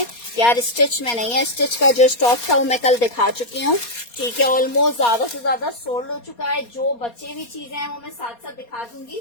यार स्टिच में नहीं है, स्टिच का जो स्टॉक था वो मैं कल दिखा चुकी हूँ। ठीक है, ऑलमोस्ट ज्यादा से ज्यादा सोल्ड हो चुका है। जो बचे हुई चीजें हैं वो मैं साथ साथ दिखा दूंगी।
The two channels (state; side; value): late; right; 4.2 ms